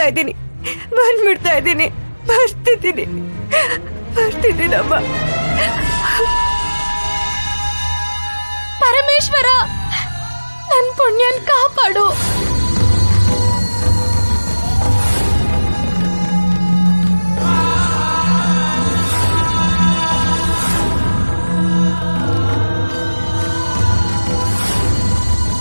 ಇದ್ದೀನಿ, ಬಂದ್ಬಿಡ್ತಾ ಇದ್ದೀನಿ, ಬರ್ತಿದ್ದೀನಮ್ಮ. ಪರಮೇಶ್ವರ, ನನ್ ಪುಣ್ಯನ್ ಕಾಪಾಡು.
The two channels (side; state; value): both; inverted; correlation -1.00